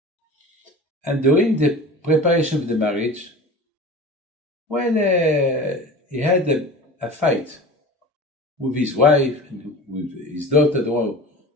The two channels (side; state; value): both; normal; correlation 0.36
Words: And during the preparation of the marriage, he had a fight with his wife and with his daughter, the one